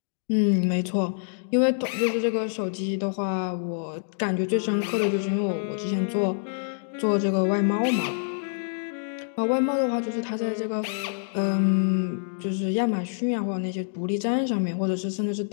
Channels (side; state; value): right; silent; digital silence